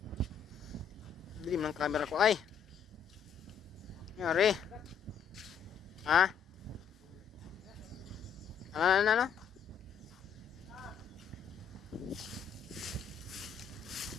Dilim ng camera ko ay. Yari. Ha? Ano?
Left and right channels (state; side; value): quieter; right; 7.2 dB